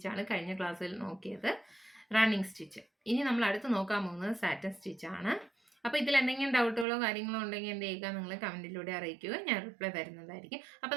കഴിഞ്ഞ ക്ലാസ്സിൽ നോക്കിയത്, റണ്ണിങ് സ്റ്റിച്ച്. ഇനി നമ്മൾ അടുത്ത് നോക്കാൻ പോകുന്നത് സാറ്റൻ സ്റ്റിച്ചാണ്. അപ്പോൾ ഇതിൽ എന്തെങ്കിലും ഡൗട്ടുകളോ കാര്യങ്ങളോ ഉണ്ടെങ്കിൽ എന്ത് ചെയ്യുക, നിങ്ങൾ കമൻറ്റിലൂടെ അറിയിക്കുക, ഞാൻ റിപ്ലൈ തരുന്നതായിരിക്കും. അപ്പോൾ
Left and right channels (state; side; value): drops out; left; at 6.9 s